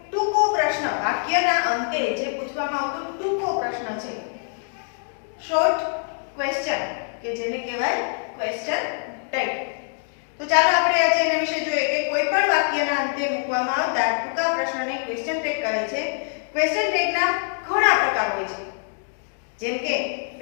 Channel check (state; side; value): silent; right; 60 dB below the other